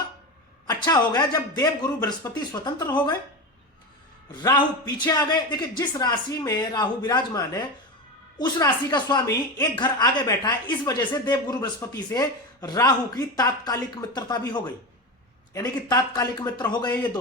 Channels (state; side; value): normal; both; correlation 0.21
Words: अच्छा हो गया, जब देवगुरु बृहस्पति स्वतंत्र हो गए, राहु पीछे आ गए। देखिए जिस राशि में राहु विराजमान है उस राशि का स्वामी एक घर आगे बैठा है, इस वजह से देवगुरु बृहस्पति से राहु की तात्कालिक मित्रता भी हो गई, यानी कि तात्कालिक मित्र हो गए ये